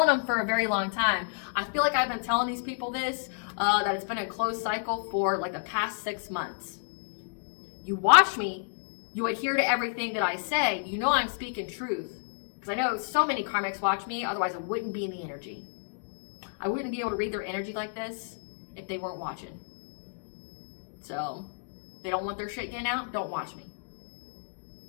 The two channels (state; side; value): silent; right; digital silence